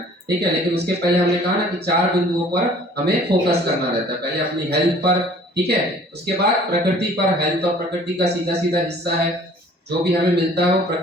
ठीक है। लेकिन उसके पहले हमने कहा ना कि 4 बिंदुओं पर हमें फोकस करना रहता है। पहले अपनी हेल्थ पर, ठीक है, उसके बाद प्रकृति पर। हेल्थ और प्रकृति का सीधा सीधा हिस्सा है, जो भी हमें मिलता है वो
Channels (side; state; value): both; normal; correlation 0.52